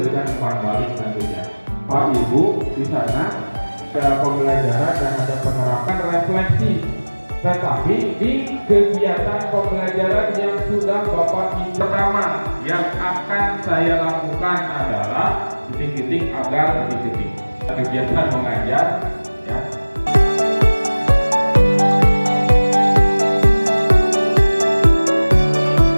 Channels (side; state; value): both; inverted; correlation -1.00